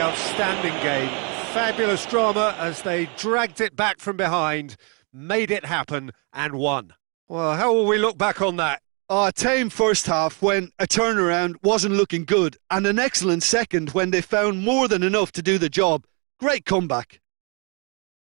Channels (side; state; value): left; quieter; 34.5 dB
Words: outstanding game. Fabulous drama as they dragged it back from behind, made it happen and won. Well, how will we look back on that? A tame first half when a turnaround wasn't looking good, and an excellent second when they found more than enough to do the job. Great comeback.